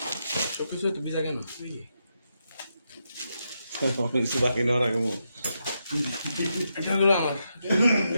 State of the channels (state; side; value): inverted; both; correlation -0.83